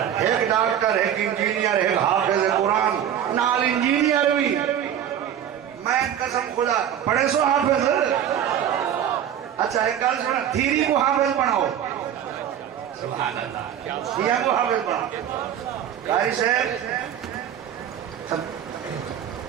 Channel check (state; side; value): quieter; left; 9.8 dB